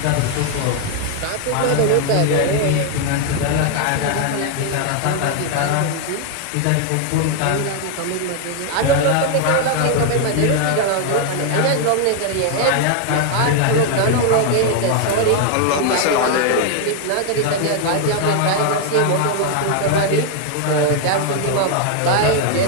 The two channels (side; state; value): both; different; correlation 0.00